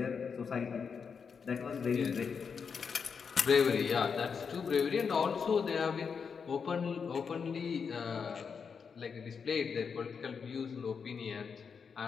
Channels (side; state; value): right; quieter; 6.1 dB